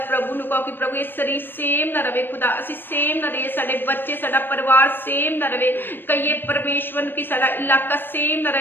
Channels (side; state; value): right; late; 0.096 ms